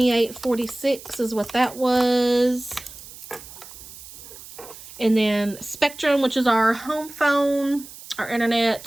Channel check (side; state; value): right; noise; hiss, 16 dB below the sound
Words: is what that was. And then Spectrum, which is our home phone, our